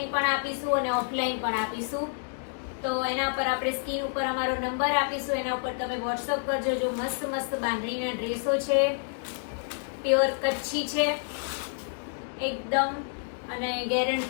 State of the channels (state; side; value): silent; right; digital silence